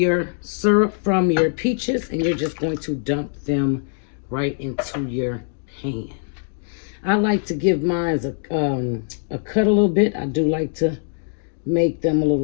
syrup from your peaches, and you're just going to dump them right into your pan. I like to give mine a cut a little bit. I do like to make them a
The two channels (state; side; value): silent; right; digital silence